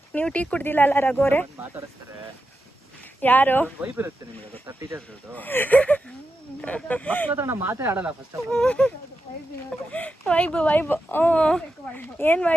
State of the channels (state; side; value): normal; both; correlation 0.89